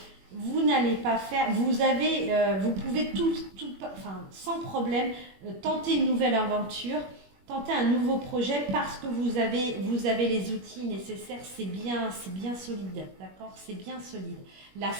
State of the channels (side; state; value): left; late; 21 ms